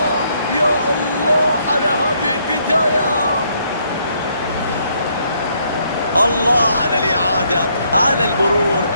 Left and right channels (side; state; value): both; inverted; correlation -0.71